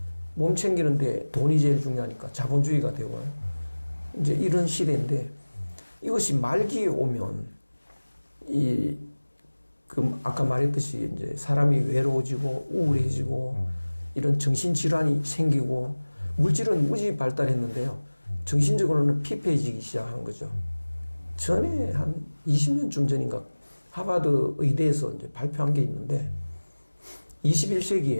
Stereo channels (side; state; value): both; inverted; correlation -1.00